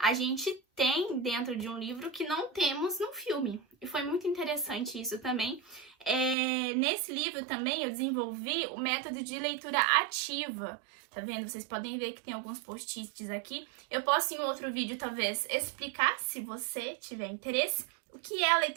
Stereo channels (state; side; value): drops out; left; at 6.4 s